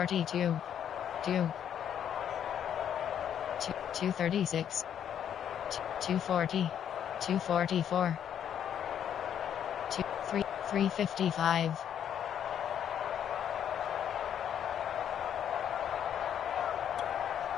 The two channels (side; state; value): right; quieter; 9.3 dB